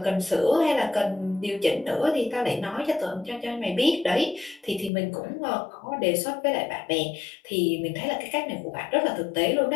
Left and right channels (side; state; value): right; drops out; at 4.9 s